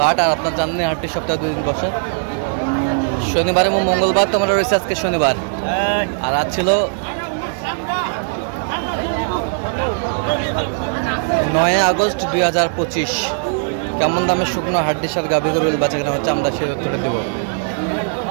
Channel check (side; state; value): left; silent; digital silence